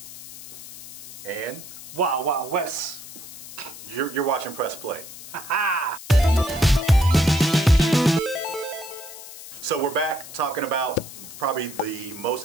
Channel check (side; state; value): left; noise; hiss, 14 dB below the sound